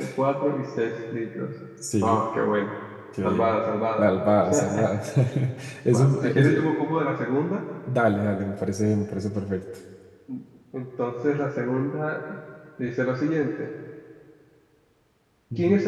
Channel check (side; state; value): both; identical; correlation 1.00